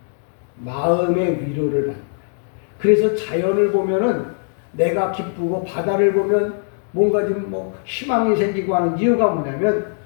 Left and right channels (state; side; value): silent; right; digital silence